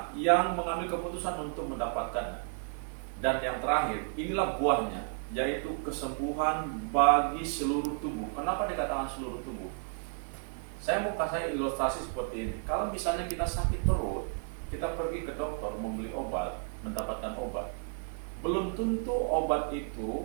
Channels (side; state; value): left; silent; 55 dB below the other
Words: yang mengambil keputusan untuk mendapatkannya. Dan yang terakhir, inilah buahnya, yaitu kesembuhan bagi seluruh tubuh. Kenapa dikatakan seluruh tubuh? Saya mau kasih ilustrasi seperti ini. Kalau misalnya kita sakit perut, kita pergi ke dokter membeli obat, mendapatkan obat. Belum tentu obat